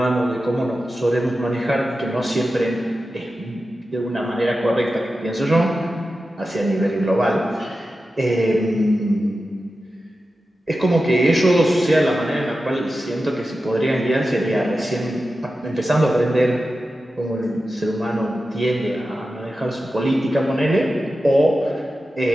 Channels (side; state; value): both; normal; correlation 0.92